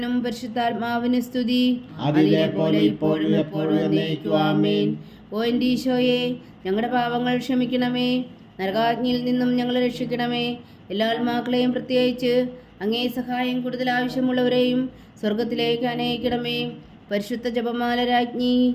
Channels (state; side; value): identical; both; correlation 1.00